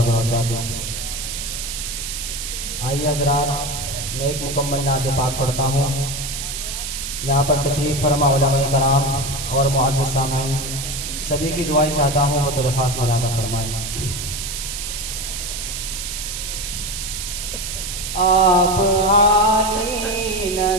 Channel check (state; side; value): noise; right; hiss, 5 dB below the sound